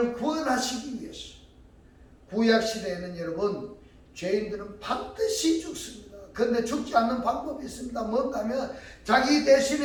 구원하시기 위해서. 구약시대에는 여러분 죄인들은 반드시 죽습니다. 그런데 죽지 않는 방법이 있습니다. 뭔가 하면 자기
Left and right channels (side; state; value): both; identical; correlation 1.00